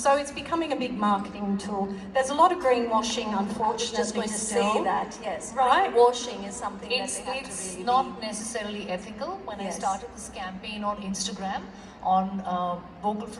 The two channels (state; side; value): identical; both; correlation 1.00